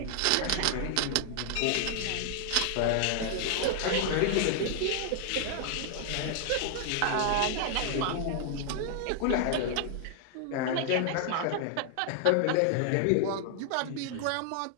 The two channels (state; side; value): different; both; correlation 0.00